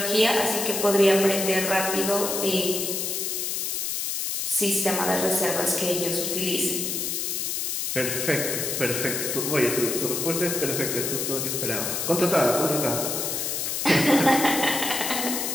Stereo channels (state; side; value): noise; left; hiss, 1 dB below the sound